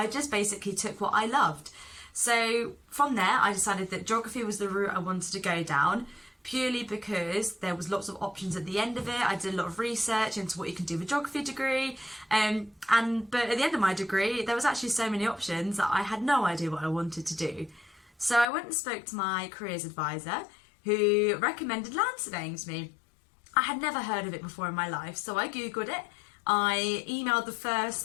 just basically took what I loved. So from there I decided that geography was the route I wanted to go down, purely because there was lots of options at the end of it. I did a lot of research into what you can do with a geography degree, but at the end of my degree there was actually so many options that I had no idea what I wanted to do. So I went and spoke to my careers advisor, who recommended land surveying to me. I had never heard of it before in my life, so I googled it. I emailed the first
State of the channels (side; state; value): right; drops out; at 18.4 s